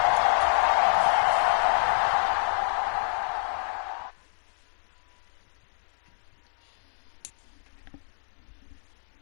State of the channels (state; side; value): silent; right; digital silence